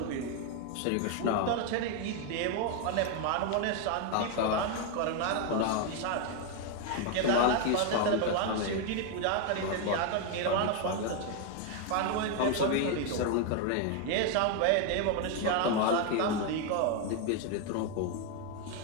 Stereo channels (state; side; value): different; both; correlation 0.01